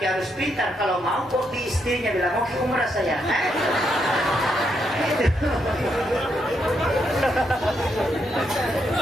harus pintar. Kalau mau kok di istrinya bilang mau ke umrah saya.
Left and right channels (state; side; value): normal; both; correlation 0.79